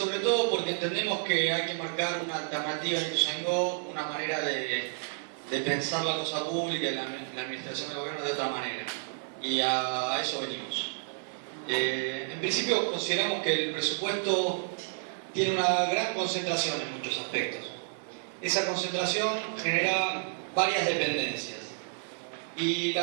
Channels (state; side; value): silent; left; 57 dB below the other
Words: todo porque entendemos que hay que marcar una alternativa en Ituzaingó, una manera de pensar la cosa pública y la administración del gobierno de otra manera, y a eso venimos. En principio consideramos que el presupuesto tiene una gran concentración en muchos aspectos. Esa concentración genera varias dependencias, y